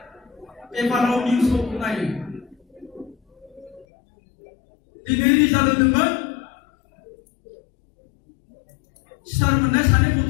peparau news tu kenanya, di negeri jalan dengan Sarmanda sana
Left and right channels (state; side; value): drops out; right; at 3.9 s